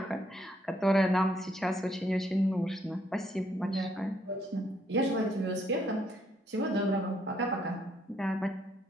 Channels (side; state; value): both; normal; correlation 0.71